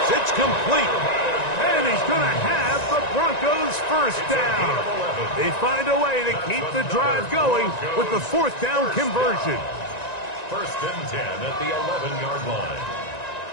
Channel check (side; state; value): right; late; 1.9 ms